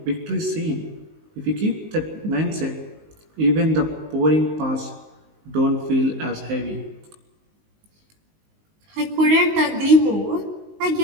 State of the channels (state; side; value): late; left; 19 ms